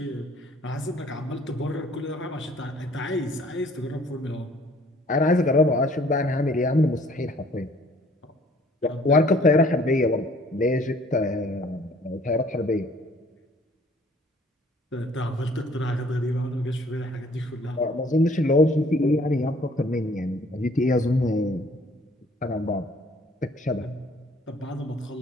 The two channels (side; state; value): both; normal; correlation 0.57